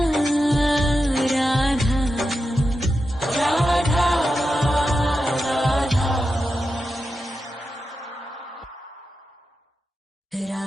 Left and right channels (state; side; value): normal; both; correlation 0.89